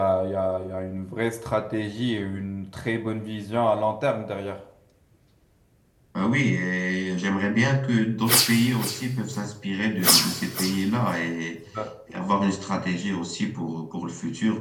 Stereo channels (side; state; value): both; identical; correlation 1.00